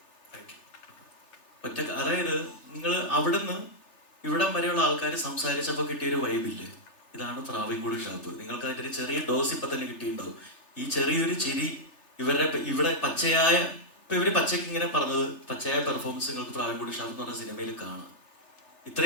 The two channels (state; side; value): late; right; 3.3 ms